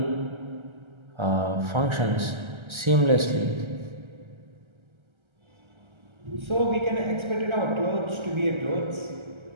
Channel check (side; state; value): left; late; 1.3 ms